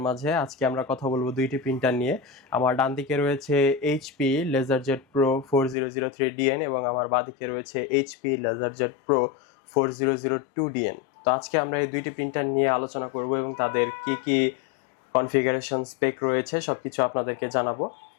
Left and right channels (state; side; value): drops out; right; at 5.8 s